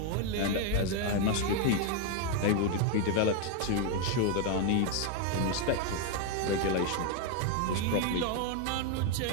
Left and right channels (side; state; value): both; different; correlation 0.01